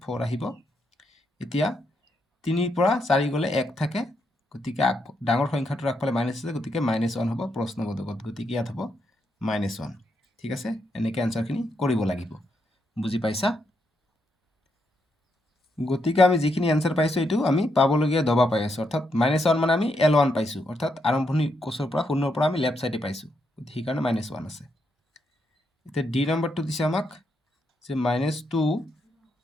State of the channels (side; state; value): both; normal; correlation 0.79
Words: 4 আহিব এতিয়া 3 পৰা 4 গ'লে 1 থাকে গতিকে ডাঙৰ সংখ্যাটোৰ আগফালে মাইনাছ আছে গতিকে -1 হ'ব প্ৰশ্নবোধকত গতিকে ইয়াত হ'ব -1 ঠিক আছে এনেকৈ আনসাৰখিনি কৰিব লাগিব বুজি পাইছা গতিকে আমি যিখিনি আনসাৰ পাইছোঁ এইটো আমি পাবলগীয়া দবা পাই আছোঁ অৰ্থাৎ -1 মানে আমি L1 পাইছোঁ অৰ্থাৎ আৰম্ভণি কোষৰ পৰা 0 পৰা আমি লেফ্ট সাইডে পাইছোঁ সেইকাৰণে -1 আছে এতিয়া ডি নম্বৰটো দিছে আমাক যে -2